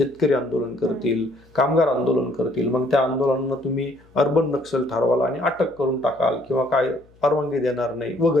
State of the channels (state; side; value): noise; left; hum, 29 dB below the sound